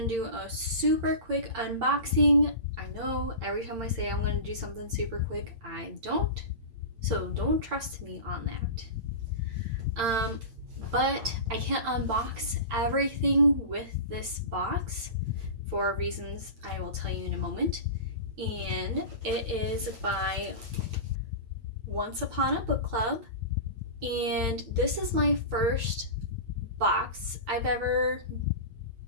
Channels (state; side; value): late; left; 8.8 ms